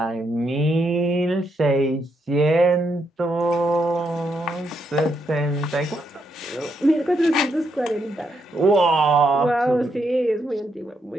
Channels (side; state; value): both; normal; correlation 0.78